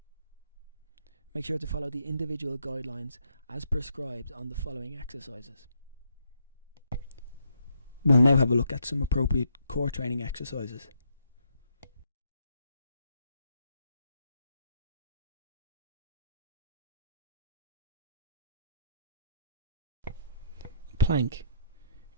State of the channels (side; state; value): both; inverted; correlation -0.72